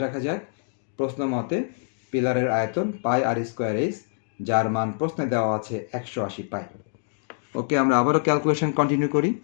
রাখা যাক। প্রশ্ন মতে পিলারের আয়তন পাই আর স্কোয়ার এইচ, যার মান প্রশ্নে দেওয়া আছে 180 পাই। ওকে, আমরা আবারও ক্যালকুলেশন কন্টিনিউ করি।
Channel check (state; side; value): silent; right; digital silence